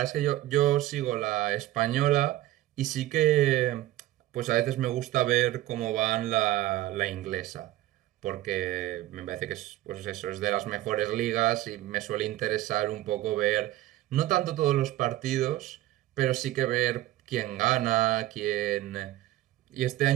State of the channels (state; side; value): quieter; left; 15.2 dB